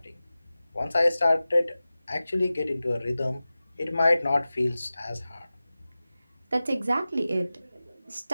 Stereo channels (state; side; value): inverted; both; correlation -0.96